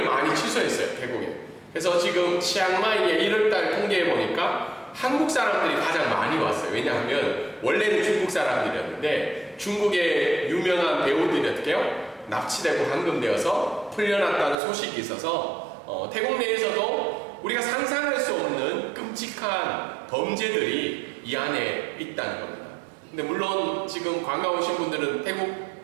많이 취소했어요, 태국에. 그래서 지금 치앙마이에 1월달 통계해보니까 한국 사람들이 가장 많이 왔어요. 왜냐하면 원래는 중국 사람들이었는데 중국의 유명한 배우들이 어떻게 해요? 납치되고 감금되어서 풀려났다는 소식이 있어서 태국 내에서도 우리가 상상할 수 없는 끔찍한 범죄들이 이 안에 있다는 겁니다. 근데 물론 지금 관광 오신 분들은 태국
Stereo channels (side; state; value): left; drops out; at 14.6 s